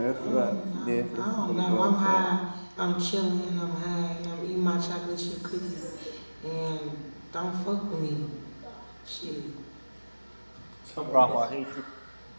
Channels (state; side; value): inverted; both; correlation -1.00